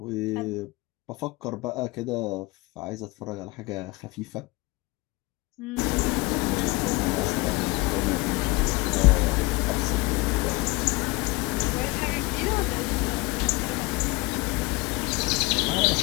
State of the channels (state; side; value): quieter; right; 23.9 dB